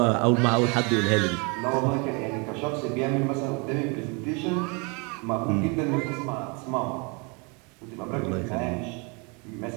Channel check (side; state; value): left; quieter; 31.7 dB